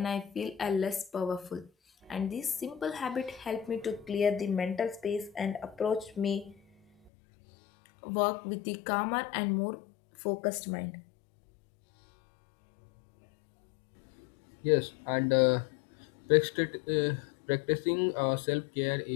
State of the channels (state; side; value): drops out; right; at 7.1 s